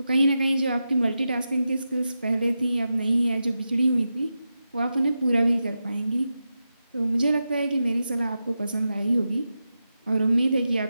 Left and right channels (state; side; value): inverted; both; correlation -0.90